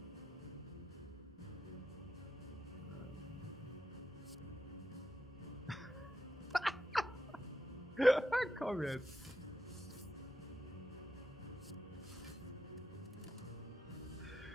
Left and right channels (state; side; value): normal; both; correlation 0.86